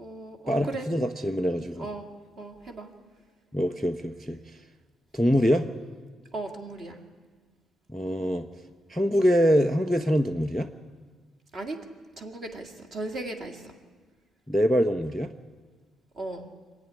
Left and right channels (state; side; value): normal; both; correlation 0.89